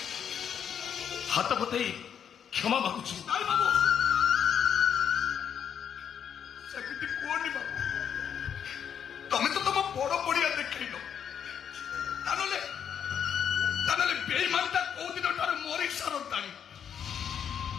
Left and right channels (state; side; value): quieter; right; 8.2 dB